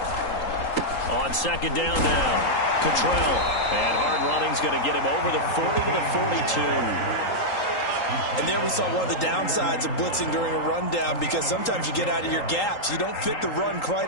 On second down now, Cottrell. And hard running's going to get him over the 40 to the 42. And there we saw one of the downsides of blitzing during a rundown because sometimes you get out of your gaps. You don't fit the run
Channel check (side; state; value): right; late; 3.8 ms